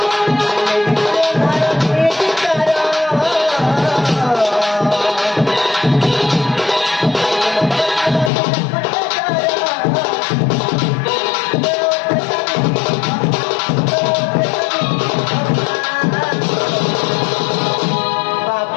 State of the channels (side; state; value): right; drops out; at 8.3 s